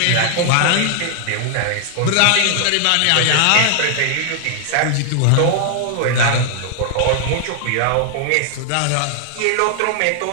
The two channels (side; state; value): both; different; correlation 0.00